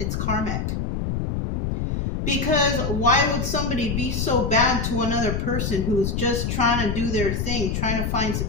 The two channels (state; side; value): noise; left; rumble, 1 dB below the sound